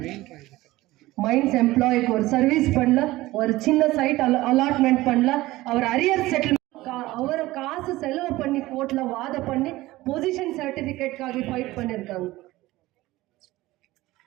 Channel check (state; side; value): quieter; left; 18.1 dB